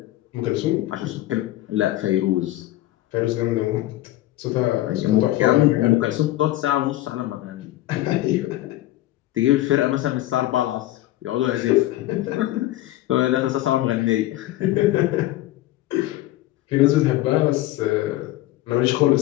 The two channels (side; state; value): right; quieter; 15.8 dB